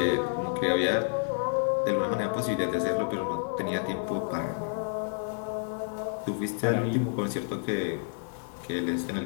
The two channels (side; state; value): right; silent; digital silence